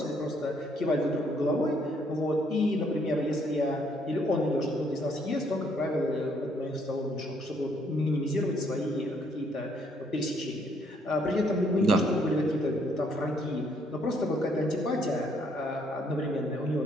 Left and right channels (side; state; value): both; normal; correlation 0.68